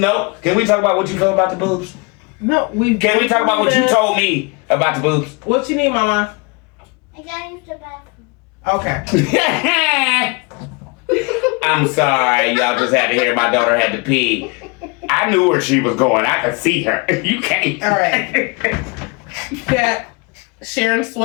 Can we talk about what you feel about the boobs? No, Can we talk about what you told me about the boobs? What you need, Mama? I gotta use the bathroom. Okay. I'm sorry, y'all just had to hear my daughter had to pee. I knew where she was going. I could see her. You can't. All right. Got Sharon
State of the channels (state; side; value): quieter; right; 29.8 dB